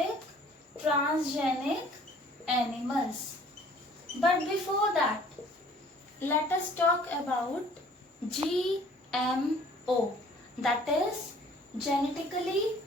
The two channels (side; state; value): both; normal; correlation 0.54